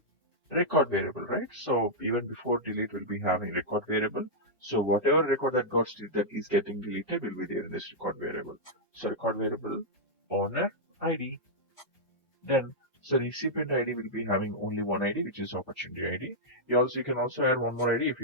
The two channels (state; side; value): normal; both; correlation -0.07